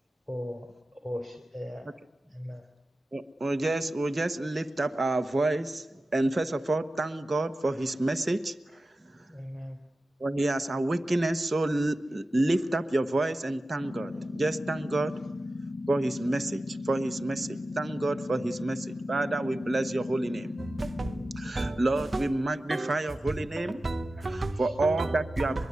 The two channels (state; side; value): normal; both; correlation 0.94